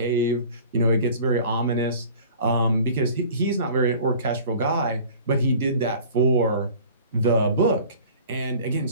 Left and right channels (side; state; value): both; inverted; correlation -0.45